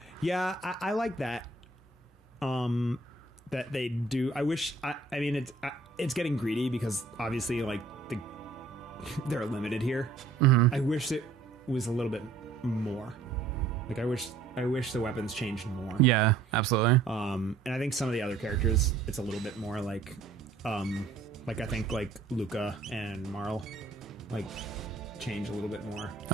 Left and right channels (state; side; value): quieter; left; 4.0 dB